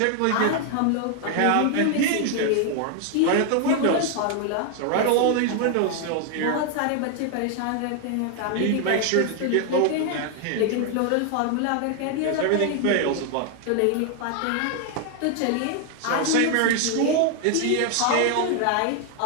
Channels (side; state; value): both; different; correlation 0.00